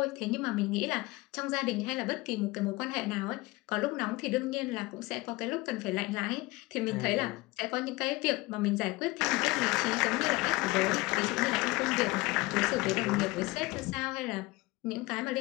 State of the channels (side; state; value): right; quieter; 22.0 dB